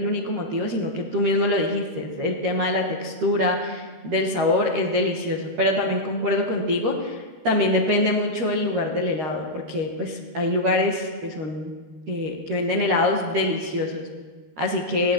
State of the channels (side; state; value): left; late; 13 ms